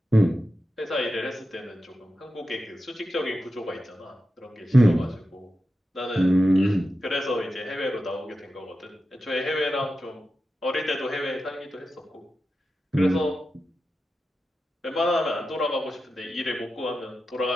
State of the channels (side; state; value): both; normal; correlation 0.91